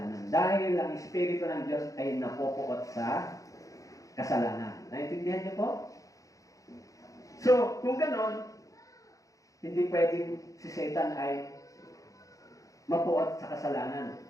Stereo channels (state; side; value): late; right; 0.16 ms